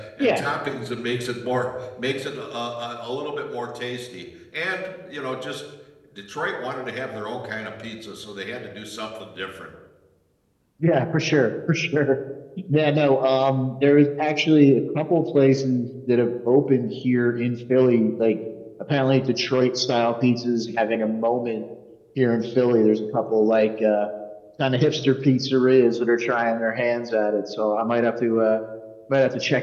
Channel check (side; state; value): both; identical; correlation 1.00